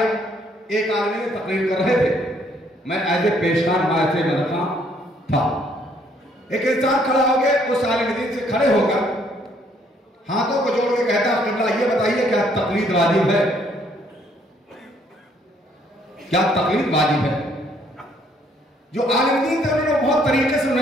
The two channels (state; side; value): normal; both; correlation 0.66